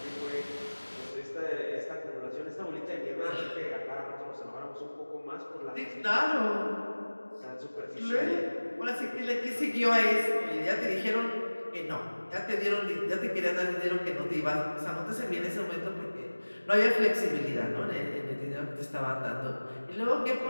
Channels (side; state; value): both; inverted; correlation -1.00